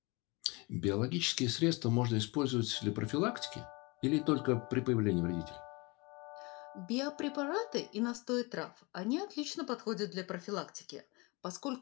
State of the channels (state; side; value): quieter; right; 26.5 dB